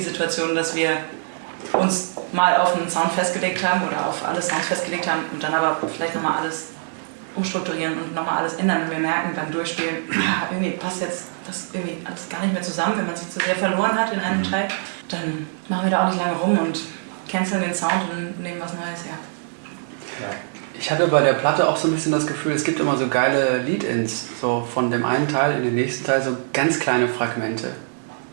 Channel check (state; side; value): silent; left; 59 dB below the other